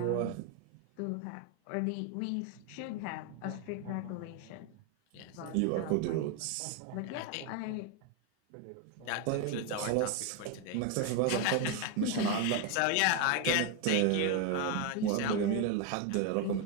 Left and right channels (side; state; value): both; different; correlation 0.01